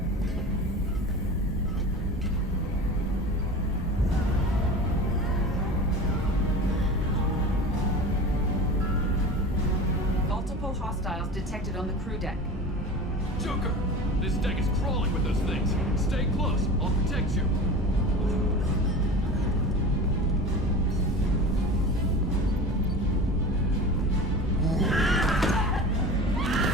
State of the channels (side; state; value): both; normal; correlation 0.34